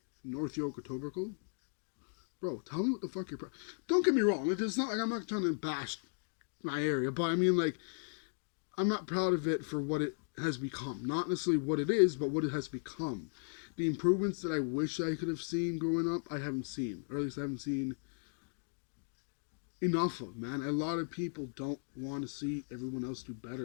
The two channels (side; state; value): right; silent; digital silence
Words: North York or Etobicoke, bro, tell me what the fuck you're proud. Don't get me wrong. It's not like I'm not trying to bash my area, but I mean, like, I'm not proud of it for what it has become. Not necessarily what it is, but what it has become. The improvements that I wish I could have seen growing up, I haven't seen. Or at least I haven't seen enough of, man. A lot of people don't want to see everyone else do